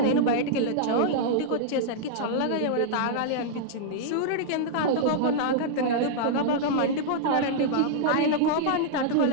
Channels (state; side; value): different; both; correlation -0.01